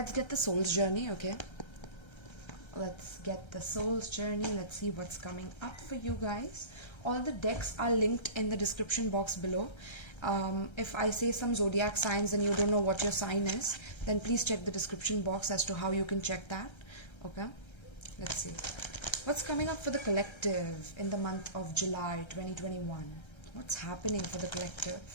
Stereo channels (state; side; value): late; right; 1.3 ms